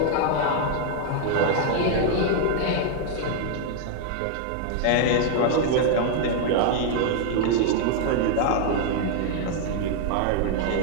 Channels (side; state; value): both; different; correlation 0.00